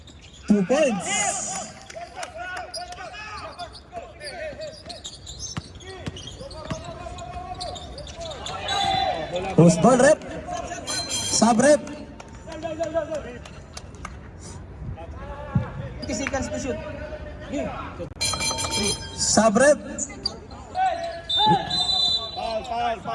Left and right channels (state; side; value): identical; both; correlation 1.00